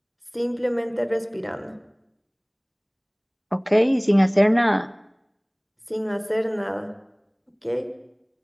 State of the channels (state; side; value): identical; both; correlation 1.00